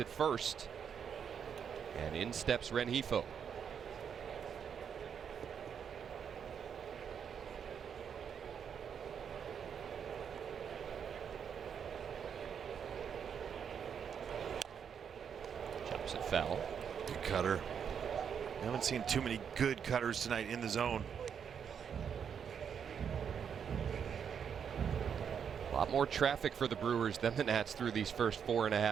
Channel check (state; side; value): quieter; left; 7.5 dB